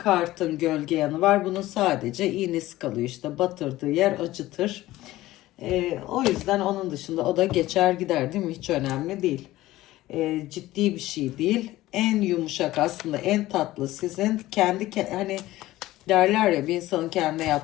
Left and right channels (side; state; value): right; quieter; 16.6 dB